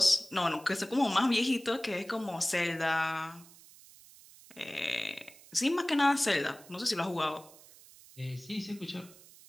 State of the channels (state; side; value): noise; right; hiss, 22 dB below the sound